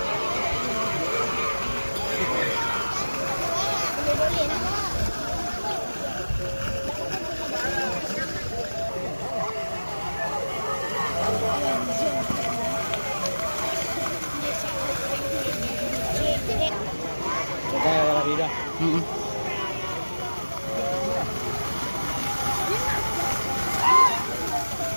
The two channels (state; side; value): inverted; both; correlation -1.00